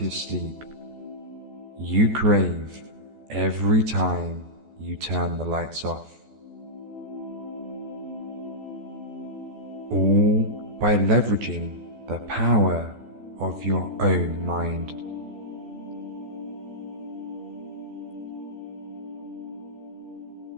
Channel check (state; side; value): late; left; 14 ms